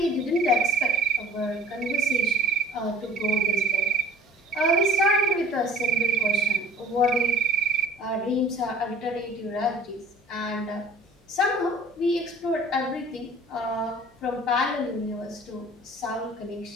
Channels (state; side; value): normal; both; correlation 0.46